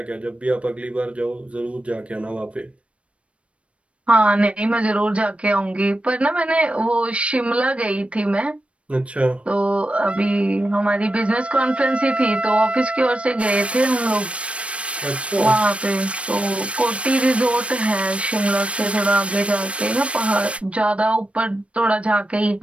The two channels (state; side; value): late; left; 0.062 ms